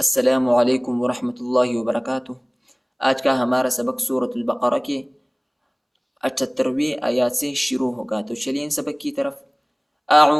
السلام علیکم ورحمۃ اللہ وبرکاتہ۔ آج کا ہمارا سبق سورۃ البقرہ کے 78ویں آیات سے شروع ہوگا، تو چلیے ان سبق کی طرف۔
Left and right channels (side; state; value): both; identical; correlation 1.00